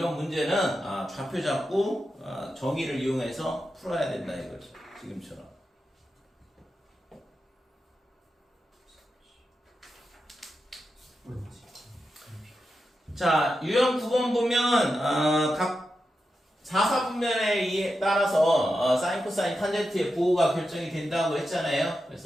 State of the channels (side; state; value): both; normal; correlation 0.89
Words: 문제는 좌표 잡고 정의를 이용해서 풀어야 된다 이거죠. 지금처럼. 자, 유형 9번 보면 각 4사분면에 따라서 사인, 코사인, 탄젠트의 부호가 결정이 된다고 했잖아요.